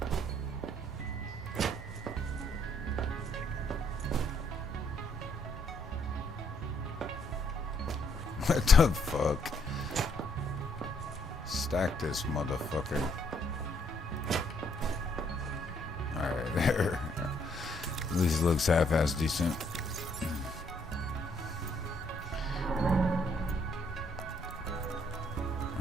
What the fuck? Stack this motherfucker. Alright, there. At least it looks half-ass decent.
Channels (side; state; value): both; normal; correlation 0.70